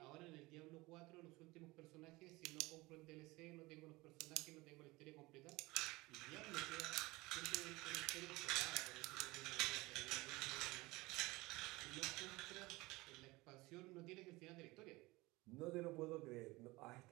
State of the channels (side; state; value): left; quieter; 21.8 dB